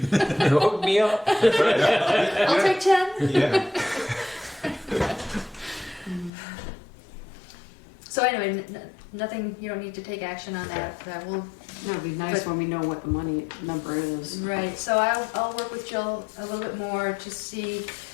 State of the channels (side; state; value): right; drops out; at 6.3 s